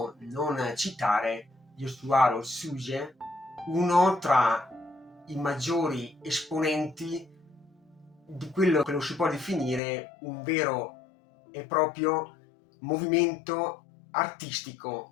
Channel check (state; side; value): drops out; right; at 9.8 s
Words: non citare Yosuwaro Tsuge, uno tra i maggiori esponenti di quello che lo si può definire un vero e proprio movimento